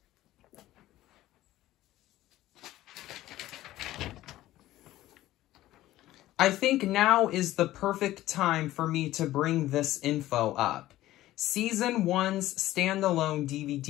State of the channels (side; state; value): right; quieter; 15.3 dB